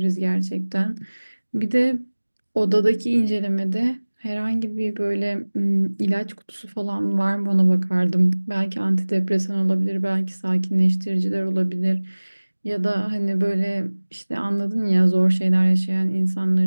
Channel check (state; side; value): inverted; both; correlation -1.00